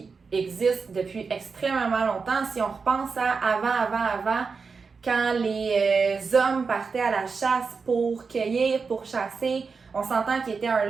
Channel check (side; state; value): left; quieter; 5.0 dB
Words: existe depuis extrêmement longtemps. Si on repense à avant, quand les hommes partaient à la chasse pour cueillir, pour chasser, on s'entend qu'il était un